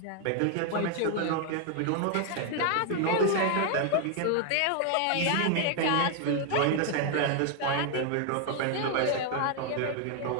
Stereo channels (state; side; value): different; both; correlation 0.00